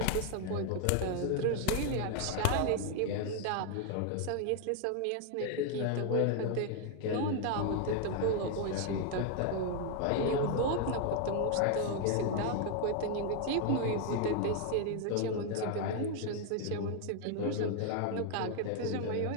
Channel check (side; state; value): both; different; correlation 0.01